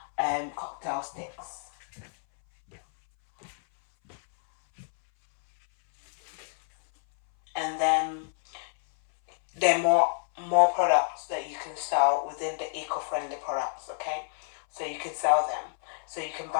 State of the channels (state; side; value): silent; right; 59 dB below the other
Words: cocktail sticks. And then there are more products that you can sell within the eco-friendly products. Okay, so you can sell them. So you can